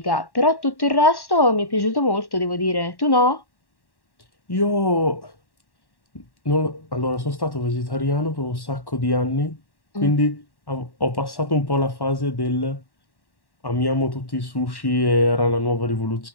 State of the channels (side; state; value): right; late; 1.1 ms